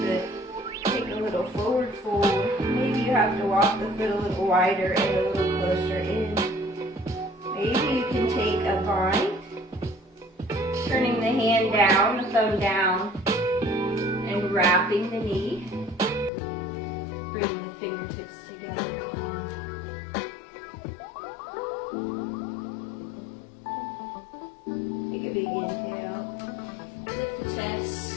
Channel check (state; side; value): drops out; right; at 16.3 s